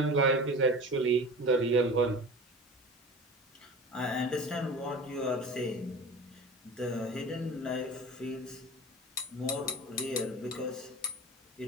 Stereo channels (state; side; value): normal; both; correlation 0.35